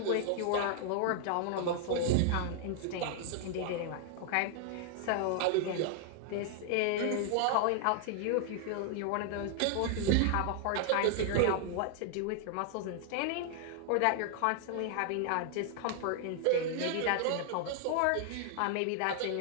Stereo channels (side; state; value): both; different; correlation 0.00